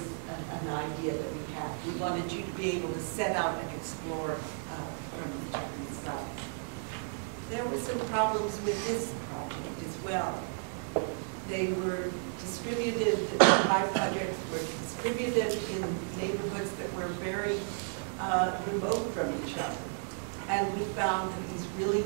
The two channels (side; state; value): left; silent; 56 dB below the other